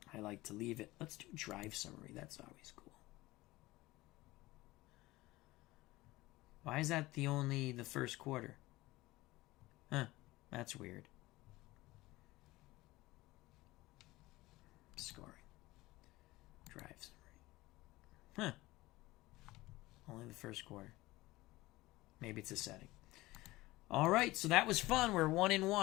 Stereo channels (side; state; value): right; quieter; 19.2 dB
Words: I like to leave it. Let's do drive summary. That's always cool. Why is that the first quarter? Huh, that's weird. Scoring. Drive summary. Huh. Only the first quarter. Maybe it's a setting. All right, so that was fun. We're